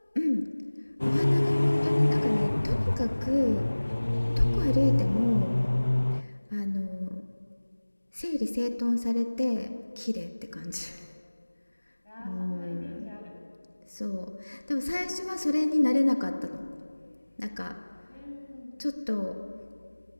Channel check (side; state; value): both; inverted; correlation -1.00